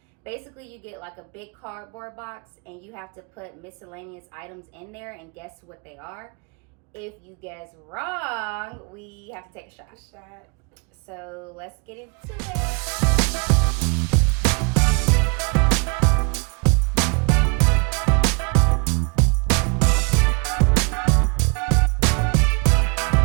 Basically, you get like a big cardboard box and you have to put miscellaneous items in there and guess what they are. If you guess wrong, we have to take a shot. So let's get into it.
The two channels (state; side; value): quieter; left; 33.0 dB